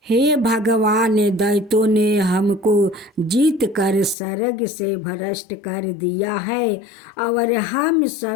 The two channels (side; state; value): right; drops out; at 4.2 s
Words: हे भगवान, दैत्यों ने हमको जीत कर स्वर्ग से भ्रष्ट कर दिया है और हम